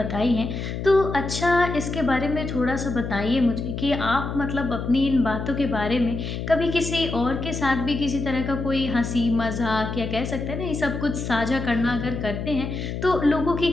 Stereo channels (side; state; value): left; noise; hum, 5 dB below the sound